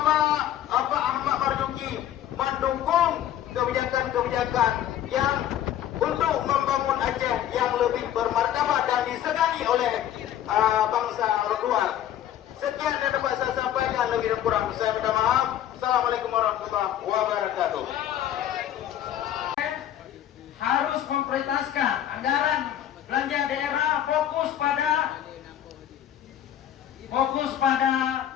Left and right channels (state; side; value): quieter; right; 11.3 dB